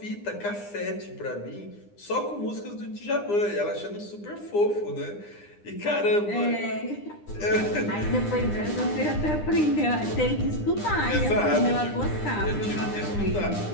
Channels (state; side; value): late; right; 9.8 ms